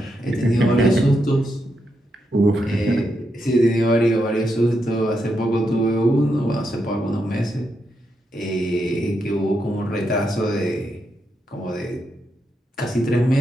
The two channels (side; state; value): both; normal; correlation 0.83